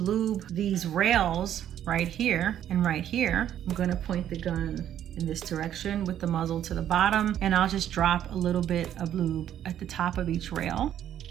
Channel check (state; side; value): quieter; left; 10.7 dB